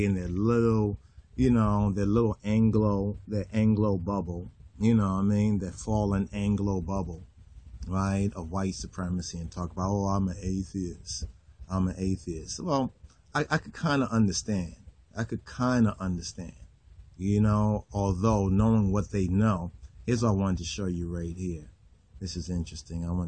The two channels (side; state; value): both; identical; correlation 1.00